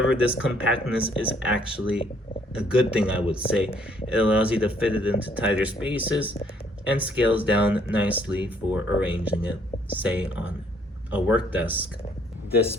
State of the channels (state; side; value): normal; both; correlation 0.65